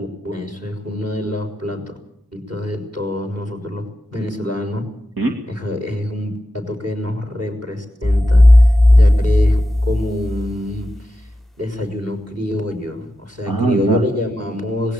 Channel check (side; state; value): both; normal; correlation 0.90